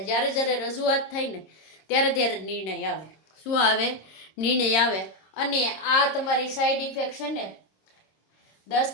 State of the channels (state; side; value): late; right; 26 ms